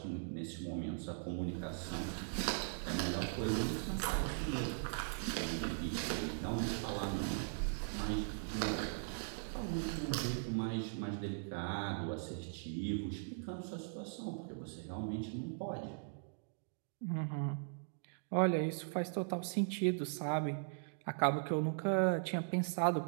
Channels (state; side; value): silent; left; digital silence